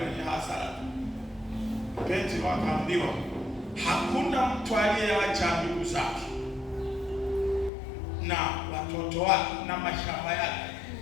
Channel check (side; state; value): right; drops out; at 7.7 s